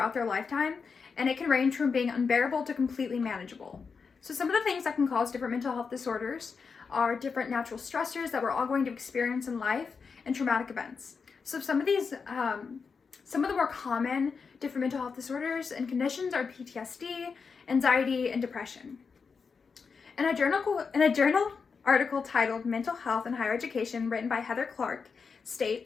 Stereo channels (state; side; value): quieter; right; 5.4 dB